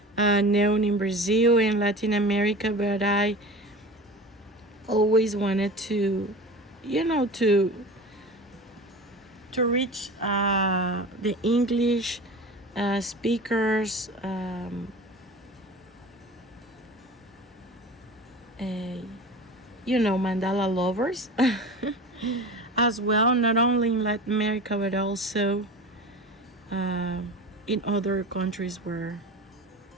known in Brazil and Latin America, but I always wanted to reach the English speakers, mandala lovers as well, not only in Latin America but also in other countries where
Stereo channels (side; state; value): both; normal; correlation 0.34